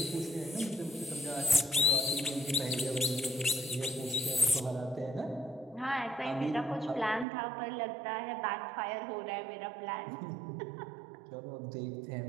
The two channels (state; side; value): drops out; left; at 7.2 s